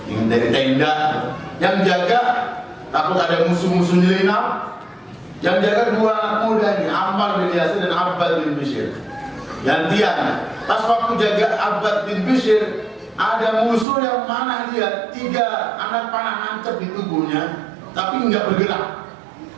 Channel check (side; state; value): left; drops out; at 13.9 s